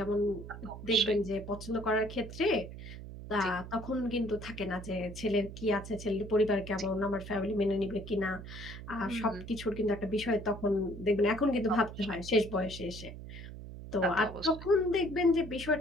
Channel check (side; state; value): right; noise; hum, 12 dB below the sound